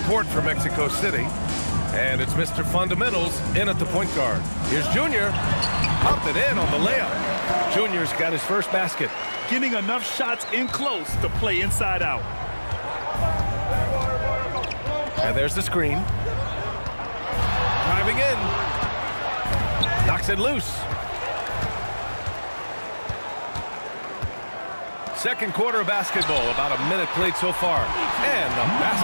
court for Mexico City, and it's Mr. Fundamentals in at the point guard. Here's Junior, popped it in on the layup. Junior's got his first basket. Getting enough shots in close to play inside out. And there's the screen. Driving in. Knocks it loose. Second quarter of basketball, about a minute played so far. And the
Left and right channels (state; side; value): inverted; both; correlation -1.00